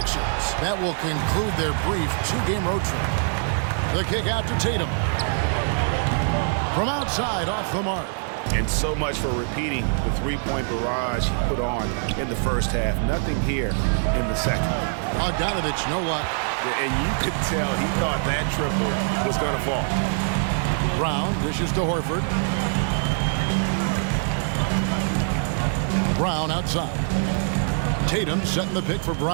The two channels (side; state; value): left; silent; 63 dB below the other